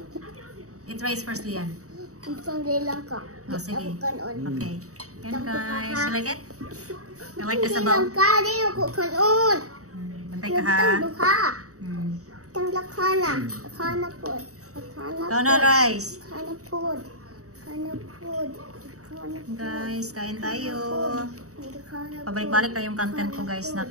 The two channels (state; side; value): late; left; 0.65 ms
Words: Eat rice first, Lian. Isang bilang ka. Oh, sige. Ako kanon. Okay. Yan guys. You like it? You like the Bilang sabaw? ka, di ako kanon. Bantay ka ha. Tang duha. Mm. Tang lakana. Lakana po. Lakana Ikaw na rice. Lakana po. Lakana po. Guys, kain tayo. Lakana po. Pabalik-balik na yung content ko guys.